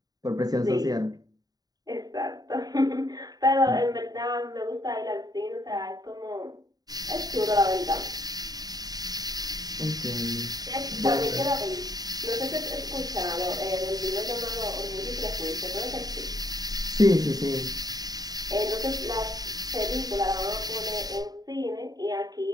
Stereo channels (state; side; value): late; left; 0.19 ms